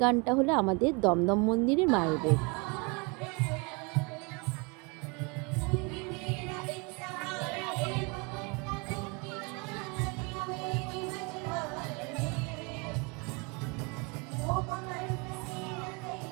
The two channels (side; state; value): left; quieter; 30.4 dB